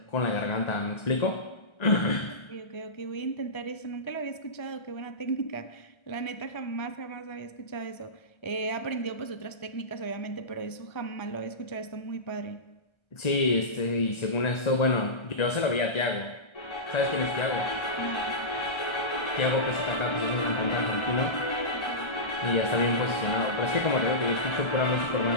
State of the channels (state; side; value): late; right; 1.3 ms